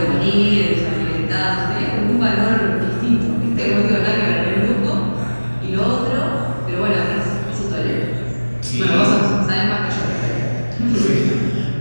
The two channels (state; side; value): inverted; both; correlation -1.00